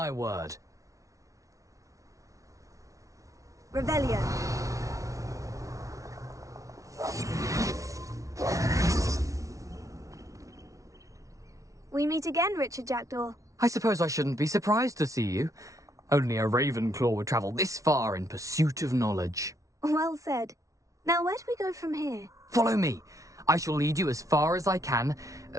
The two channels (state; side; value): late; left; 0.16 ms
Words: word. Revelio. We meet again, Richard Jackdaw. I suppose I shouldn't be surprised to see you. Only a Ravenclaw would travel this far in pursuit of knowledge. Well said. Now where do we go from here? Follow me. I shall lead you as far as I can,